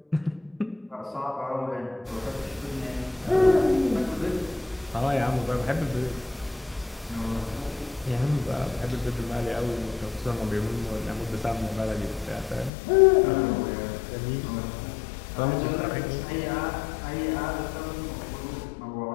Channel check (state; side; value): drops out; right; at 12.7 s